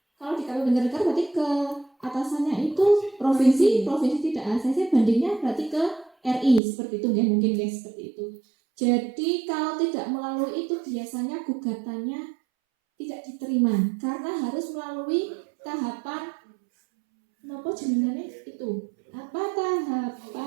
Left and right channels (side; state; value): left; drops out; at 6.6 s